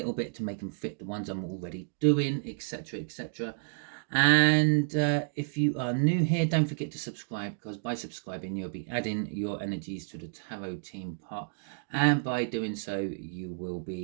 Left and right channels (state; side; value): silent; left; digital silence